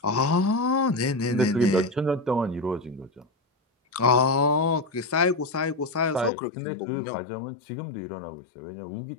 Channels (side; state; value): right; drops out; at 6.3 s